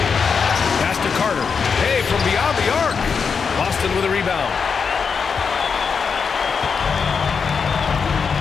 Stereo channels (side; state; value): right; quieter; 5.8 dB